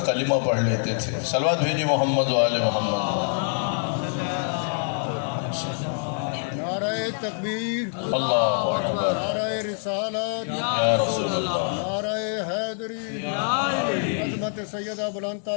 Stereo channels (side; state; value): right; silent; digital silence